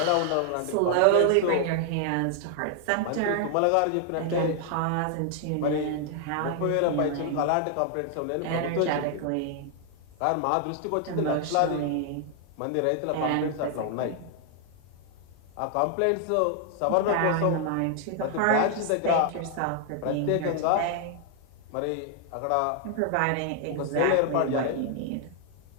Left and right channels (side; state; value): both; different; correlation 0.00